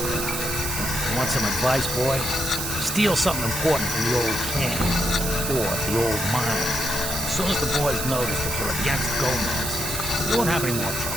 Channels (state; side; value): noise; right; hiss, 3 dB below the sound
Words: crowd. You want some advice, boy? Steal something important from the old camp, or the old mine. As soon as the boys notice that you're against Gomez, you won't have any more